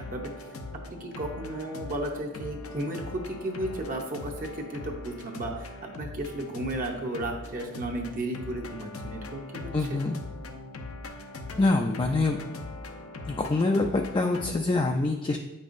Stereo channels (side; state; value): both; normal; correlation 0.65